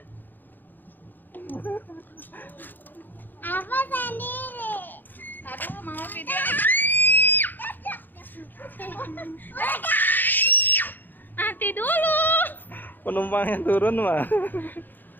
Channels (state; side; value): late; right; 0.089 ms